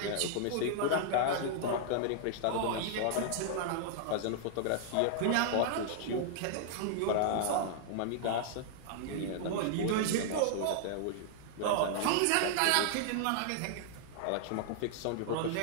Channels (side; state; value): both; different; correlation -0.01